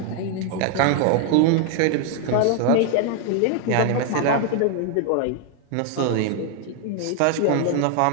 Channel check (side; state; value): both; different; correlation 0.00